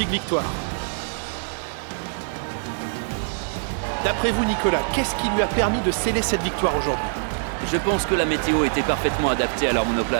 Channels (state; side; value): silent; left; digital silence